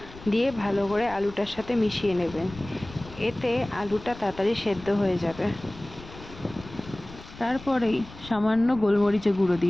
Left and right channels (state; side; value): noise; left; rumble, 17 dB below the sound